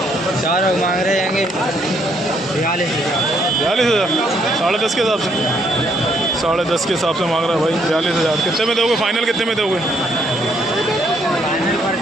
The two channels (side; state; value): both; normal; correlation 0.70